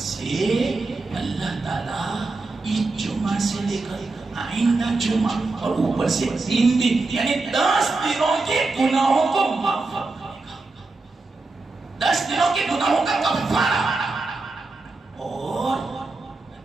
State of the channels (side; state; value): left; quieter; 3.5 dB